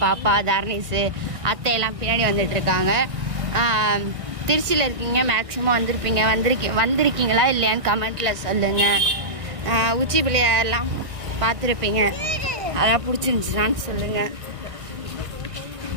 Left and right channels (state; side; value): late; left; 1.6 ms